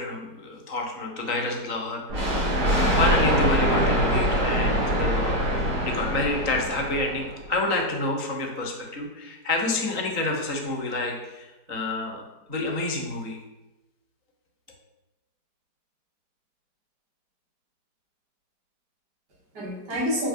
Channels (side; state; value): left; late; 4.0 ms